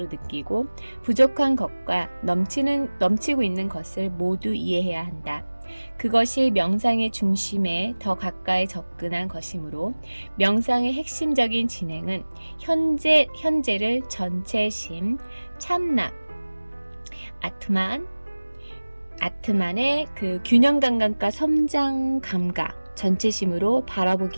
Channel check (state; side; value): inverted; both; correlation -1.00